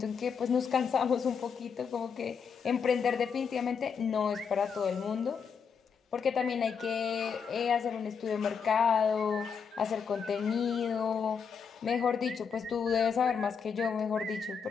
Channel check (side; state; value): right; quieter; 6.3 dB